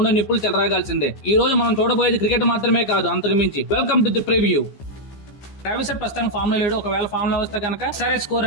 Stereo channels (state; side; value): late; right; 15 ms